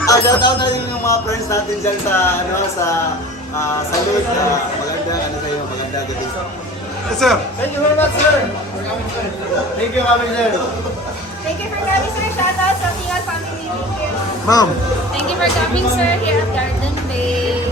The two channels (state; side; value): normal; both; correlation 0.40